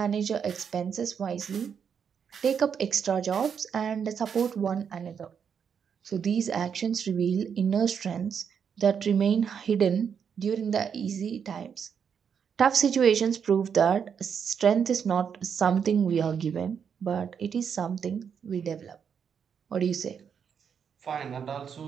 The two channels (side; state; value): left; quieter; 7.2 dB